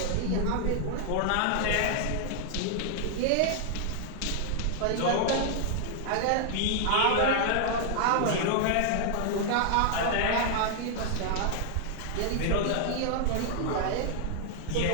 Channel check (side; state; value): both; different; correlation 0.00